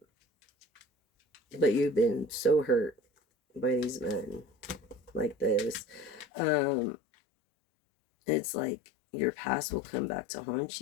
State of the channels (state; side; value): drops out; right; at 6.2 s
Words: you've been so hurt by these men like this. It's like your past will come back to haunt